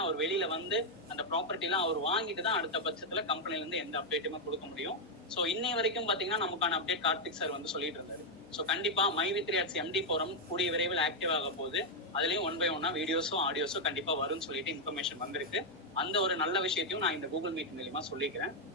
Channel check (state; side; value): normal; both; correlation 0.00